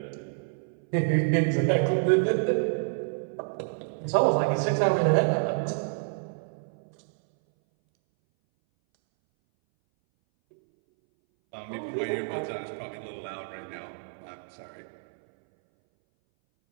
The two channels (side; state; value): left; silent; 59 dB below the other